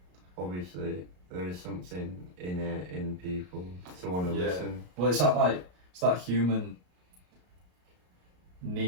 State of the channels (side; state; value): left; late; 33 ms